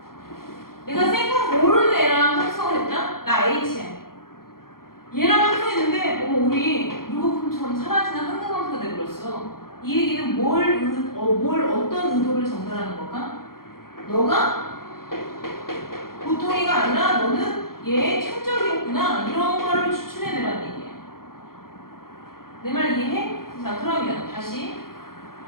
내가 생각 모르는 애랑 합성을 했다? 나 H야. 얘랑 합성했는데 우리 물거품처럼 사라지는 항등함수가 돼버렸어. 이 얘기는 어떤 의도를 전달하는 걸까? 너가 보통이가 아니라 너는 얘의 천적이었구나. 이런 거를 추출해내라는 얘기야. 내 말 이해해? 자, 그러면 다시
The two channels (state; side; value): late; right; 0.92 ms